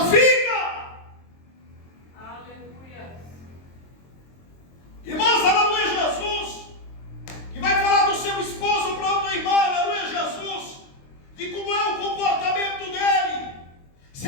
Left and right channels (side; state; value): right; late; 23 ms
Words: fica! Aleluia. Irmãos, aleluia Jesus, que vai falar do seu esposo para outra irmã, aleluia Jesus, de como é o comportamento dele, se